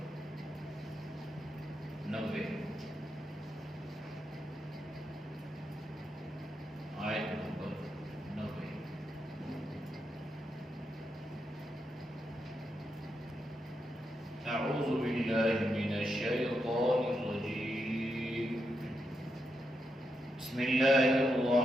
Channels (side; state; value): both; normal; correlation 0.84